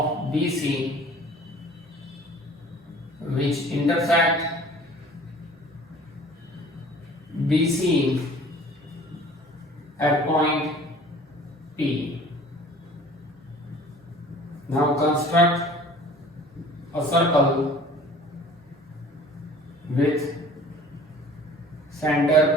BC which intersect BC at point P. Now construct a circle with center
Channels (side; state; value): both; normal; correlation 0.48